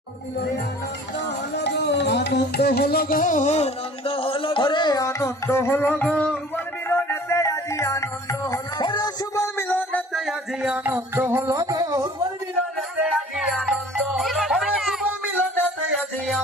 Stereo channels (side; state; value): both; normal; correlation 0.49